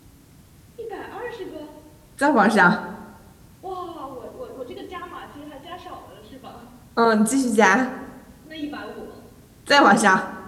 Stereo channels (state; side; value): identical; both; correlation 1.00